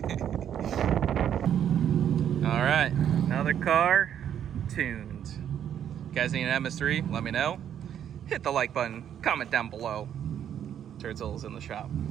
have. All right, another car tuned. You guys need an MS3? Let me know. Hit the like button, comment down below. Turtle's in the shop.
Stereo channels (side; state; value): left; quieter; 9.6 dB